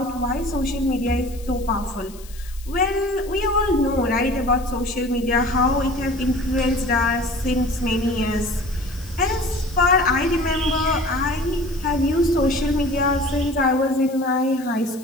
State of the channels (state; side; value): noise; left; hiss, 21 dB below the sound